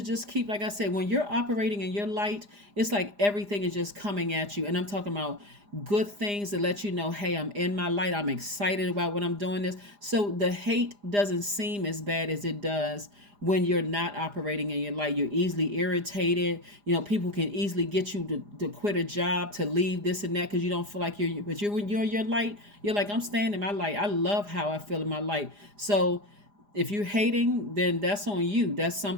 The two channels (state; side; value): late; left; 4.9 ms